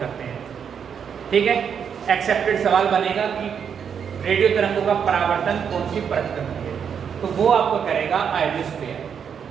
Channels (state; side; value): quieter; left; 7.4 dB